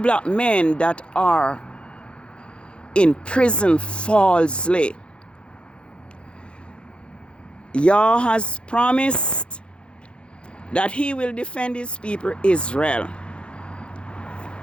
men that are in prison falsely. Yah has promised that he will defend his people Israel.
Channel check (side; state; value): right; late; 0.056 ms